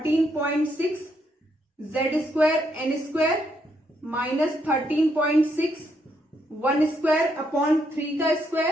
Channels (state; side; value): normal; both; correlation 0.76